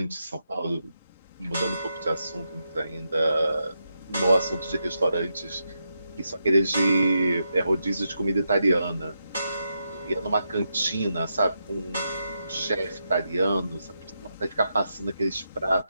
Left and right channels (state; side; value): inverted; both; correlation -0.85